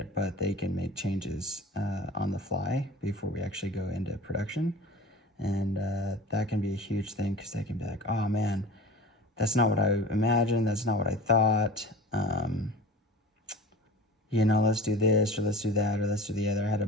but they can make changes on the fly before we actually go into production. And that can be a huge thing because they can be like, oh man, that's not what I imagined, that's not what I thought. You know, let's do this, or let's do that, or let's do the other. I had a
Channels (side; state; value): both; normal; correlation 0.37